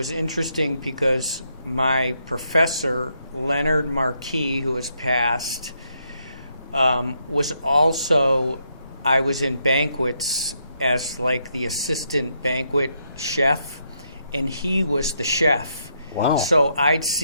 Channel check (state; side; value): inverted; both; correlation -0.77